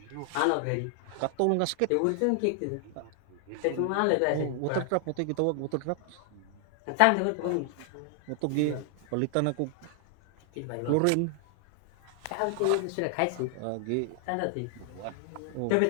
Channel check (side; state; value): both; different; correlation 0.00